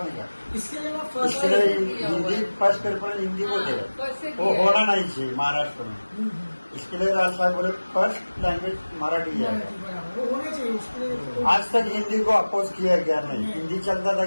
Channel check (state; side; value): inverted; both; correlation -1.00